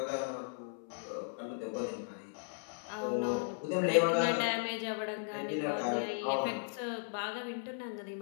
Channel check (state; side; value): silent; right; 54 dB below the other